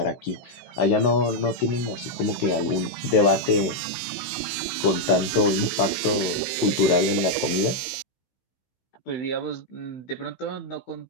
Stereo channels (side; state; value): right; late; 16 ms